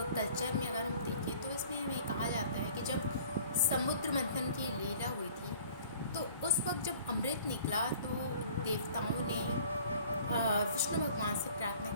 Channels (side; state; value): both; inverted; correlation -0.50